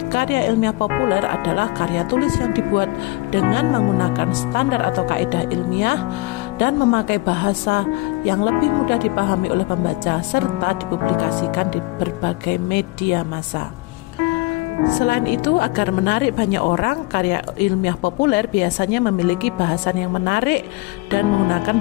karya ilmiah populer adalah karya tulis yang dibuat dengan menggunakan standar atau kaidah ilmiah dan memakai bahasa yang lebih mudah dipahami oleh pembaca serta dipublikasikan di berbagai media massa. Selain itu, agar menarik banyak orang, karya ilmiah populer biasanya memiliki bahasan yang menarik dan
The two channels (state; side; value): quieter; right; 21.6 dB